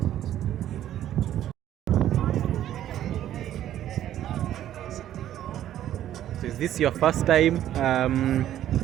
So is this your first time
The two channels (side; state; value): left; quieter; 11.9 dB